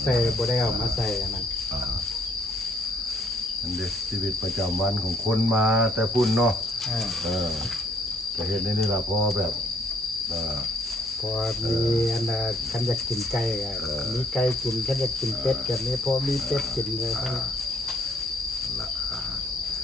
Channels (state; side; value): normal; both; correlation 0.64